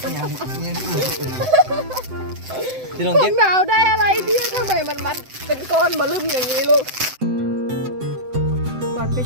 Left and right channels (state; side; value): late; left; 7.8 ms